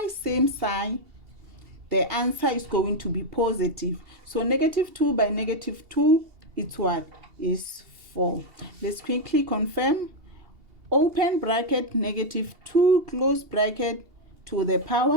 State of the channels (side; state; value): left; late; 2.8 ms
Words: same sign, the answer is going to be positive. So negative 2 by negative 2, it's what? Is 4. Let's quickly confirm. Open bracket, negative 2, close bracket, to the